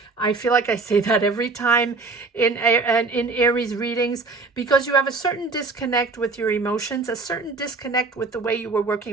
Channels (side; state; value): left; quieter; 4.0 dB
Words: I feel like I say that every time in Aries readings, because you have a certain disconnect with your emotions, a certain disconnect with the way you were